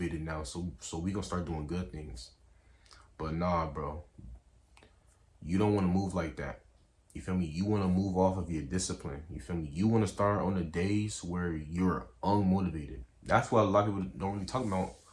now, so we gonna start doing good things. But nah, bro, you don't want to move like that. You feel me? You want to move off of your discipline. You feel me? You want to start on the days where you're unmotivated. That's what a lot of people don't really talk about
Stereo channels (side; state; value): both; identical; correlation 1.00